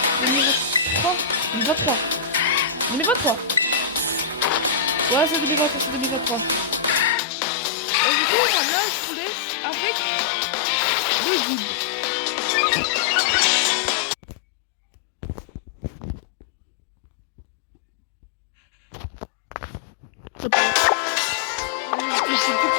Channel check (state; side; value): drops out; right; at 7.2 s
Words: 2023, 2023. 2023. Ouais, c'est 2023, c'est 2023. Et du coup, voilà, je vous laisse avec le guide. C'est tout